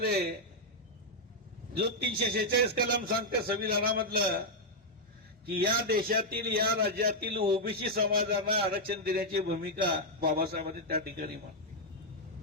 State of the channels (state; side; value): normal; both; correlation -0.02